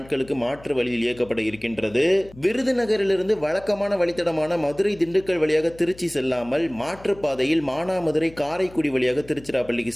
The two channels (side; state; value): left; noise; hum, 21 dB below the sound